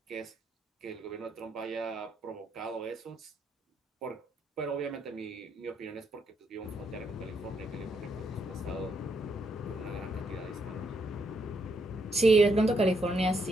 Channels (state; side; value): normal; both; correlation 0.76